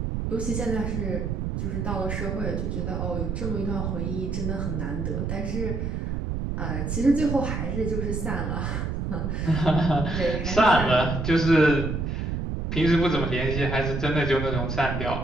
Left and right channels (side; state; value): right; noise; rumble, 2 dB below the sound